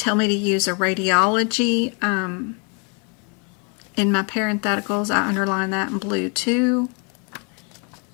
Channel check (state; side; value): quieter; right; 35.2 dB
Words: me to use a radiology, in my parentheticals, I underline that in blue too.